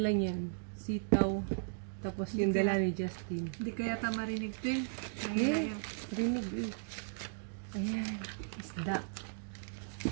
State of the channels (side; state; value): left; silent; digital silence